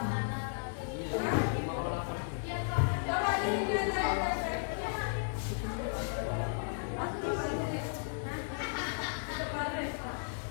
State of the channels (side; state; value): right; silent; digital silence